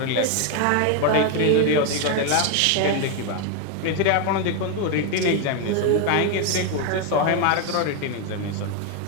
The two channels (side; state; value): both; different; correlation 0.01